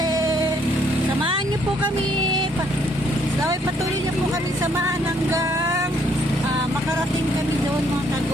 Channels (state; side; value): normal; both; correlation 0.67